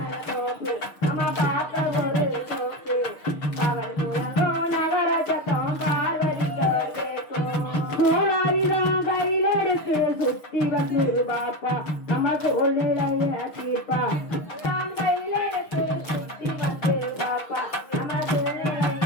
தோப்பு அம்மா காக்க ஒரு சோப்பு பகல் முழங்கோ நவர சத்தம் பார்வதிக்கோ கோளாரிதான் கையில் எடுத்து சுத்தி வந்து பாப்பா நம்ம சூழ்நிலையில தீர்ப்பா கையில் எடுத்து சுத்தி வந்து பாப்பா நம்ம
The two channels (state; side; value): late; right; 6.5 ms